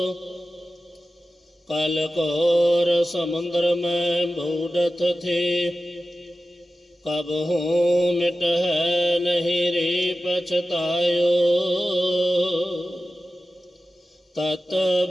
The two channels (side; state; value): both; normal; correlation 0.93